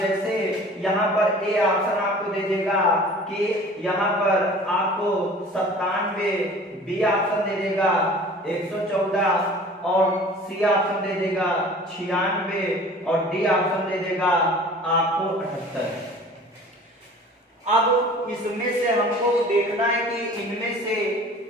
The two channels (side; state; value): both; normal; correlation 0.45